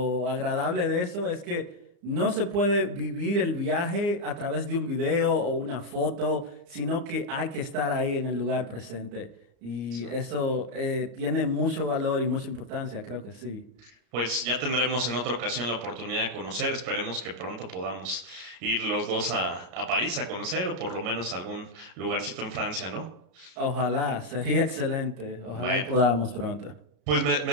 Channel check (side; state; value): left; late; 34 ms